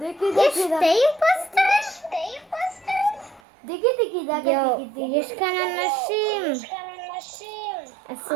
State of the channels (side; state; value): left; drops out; at 3.4 s